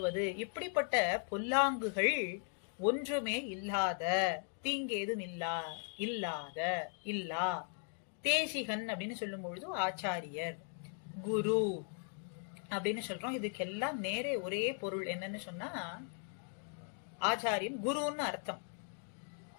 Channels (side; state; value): right; silent; 52 dB below the other